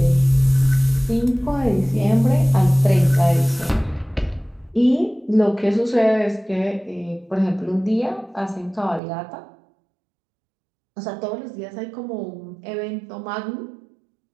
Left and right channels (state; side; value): drops out; left; at 9.0 s